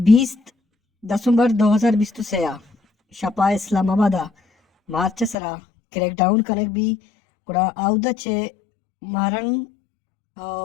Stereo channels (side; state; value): right; drops out; at 5.4 s